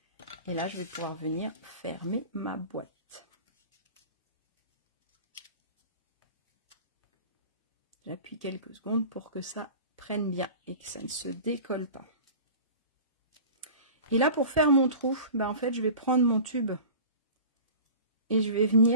Et là, je vais pouvoir venir fermer ma boîte. J'appuie quelques secondes pour que ça prenne bien et que ça ne se décolle pas. Et là, pour faire mon trou, ben en fait, je vais prendre mon tube et je vais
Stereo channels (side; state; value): both; inverted; correlation -0.39